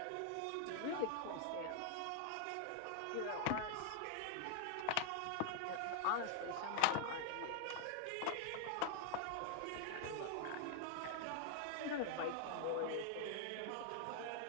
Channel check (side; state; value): both; different; correlation 0.00